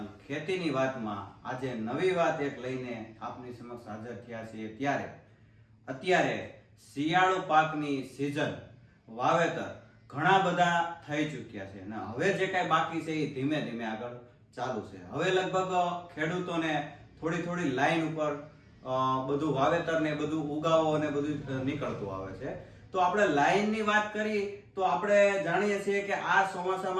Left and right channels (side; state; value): both; identical; correlation 1.00